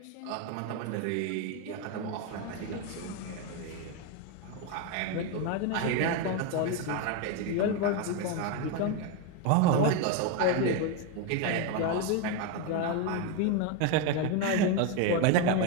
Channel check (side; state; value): both; different; correlation 0.02